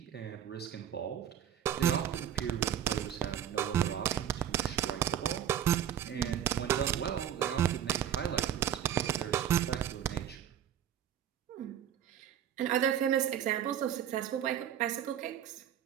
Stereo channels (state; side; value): quieter; left; 10.0 dB